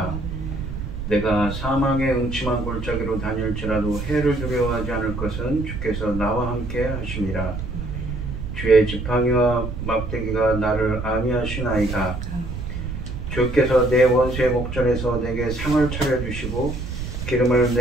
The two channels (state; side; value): noise; right; rumble, 6 dB below the sound